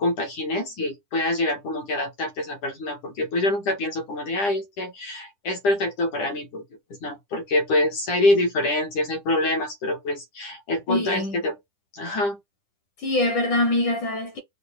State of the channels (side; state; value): right; late; 10 ms